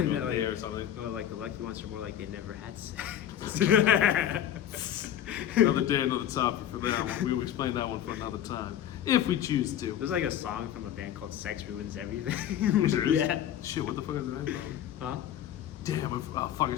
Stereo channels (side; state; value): right; quieter; 10.8 dB